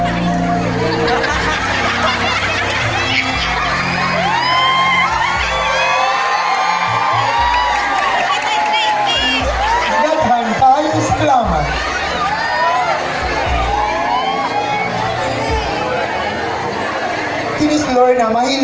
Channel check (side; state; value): both; identical; correlation 1.00